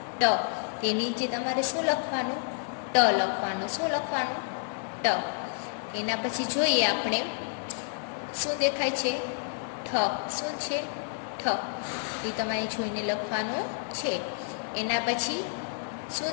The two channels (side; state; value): right; silent; digital silence